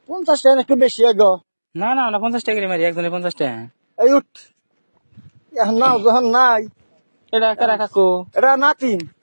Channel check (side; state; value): both; inverted; correlation -1.00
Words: 50 টাকা একটু বেশি গো না না না 50 টাকা করে মারি একজনে 50 টাকা এই উঠ এখন নাও যখন নাই এটা কারা কাকু এটা নাতিন